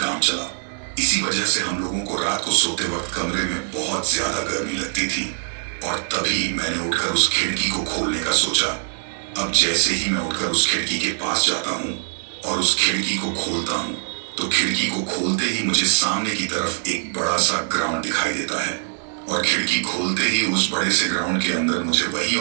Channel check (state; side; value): silent; left; 64 dB below the other